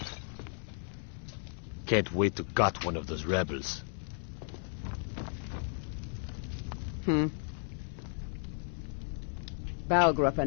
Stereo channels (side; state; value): right; silent; 55 dB below the other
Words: Can't wait to gut one of those rebels. Balgruff